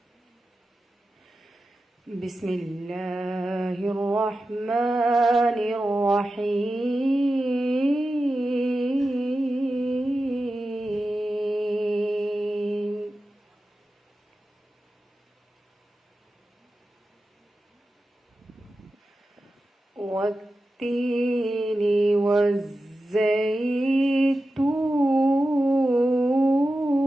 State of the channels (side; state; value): both; normal; correlation 0.93